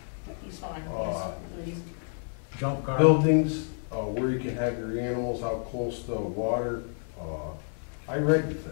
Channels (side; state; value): right; silent; 58 dB below the other